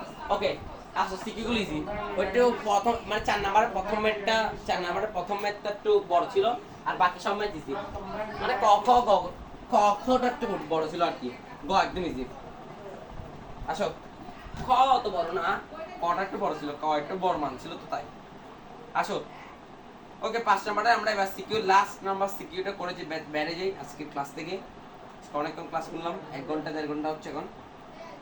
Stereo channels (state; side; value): identical; both; correlation 1.00